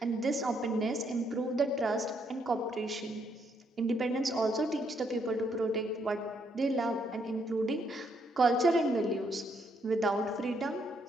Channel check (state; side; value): normal; both; correlation 0.73